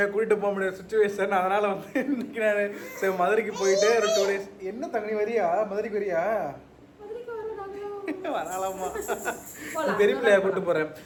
கூட்டிட்டு போக முடியாத சுச்சுவேஷன். அதனால வந்து இன்னைக்கு நான் ஸோ மதுரைக்கு போயிட்டு ஒரு 2 days. என்ன தங்கி வரியா? மதுரைக்கு வரியா? வரலாமா? பெரிய பிள்ளையா கூப்பிட்டு போறேன்.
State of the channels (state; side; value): identical; both; correlation 1.00